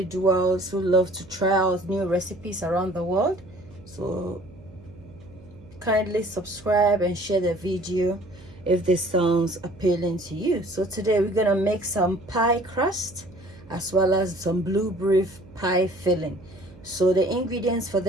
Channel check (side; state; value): right; noise; hum, 21 dB below the sound